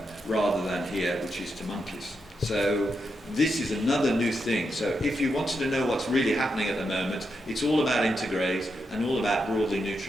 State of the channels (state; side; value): normal; both; correlation 0.84